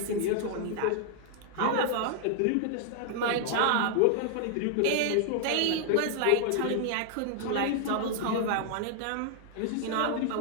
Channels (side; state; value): both; different; correlation 0.00